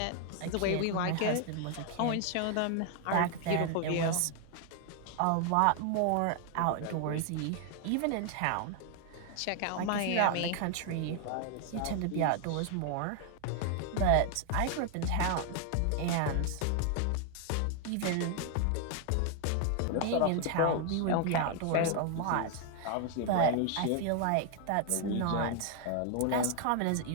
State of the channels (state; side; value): different; both; correlation 0.00